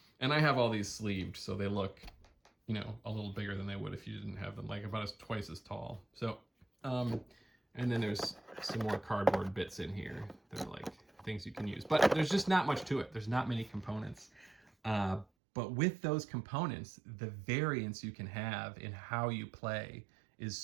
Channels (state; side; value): drops out; left; at 15.2 s